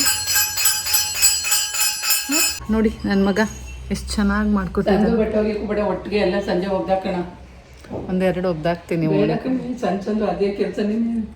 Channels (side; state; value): both; identical; correlation 1.00